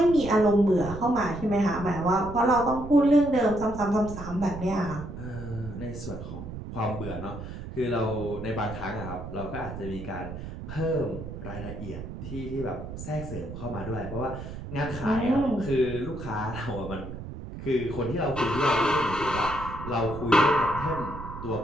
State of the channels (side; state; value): right; noise; rumble, 10 dB below the sound